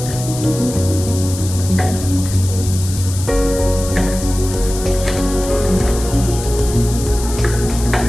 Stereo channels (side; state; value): left; noise; hiss, 10 dB below the sound